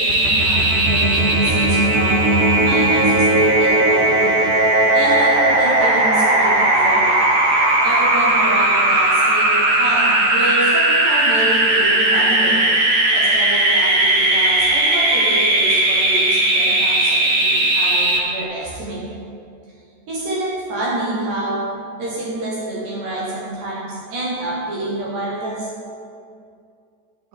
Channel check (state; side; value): late; left; 14 ms